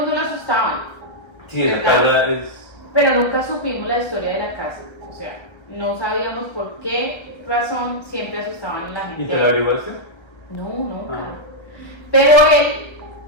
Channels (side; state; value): right; late; 1.3 ms